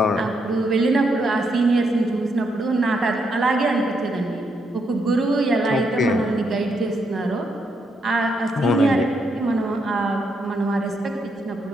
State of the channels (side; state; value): both; normal; correlation 0.78